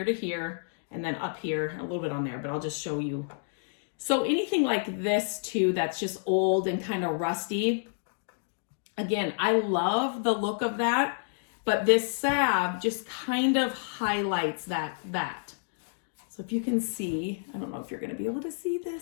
to here, and then up here, a little bit on there, but I'll just show you. So anything like this too, that's just old and kind of rusty. Again, I love the look of that. but this salve just kind of highlights that. So if you can see, I don't know if you're going to be able to see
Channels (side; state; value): right; silent; digital silence